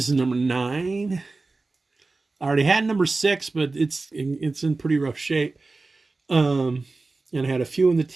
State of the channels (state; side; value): quieter; left; 3.6 dB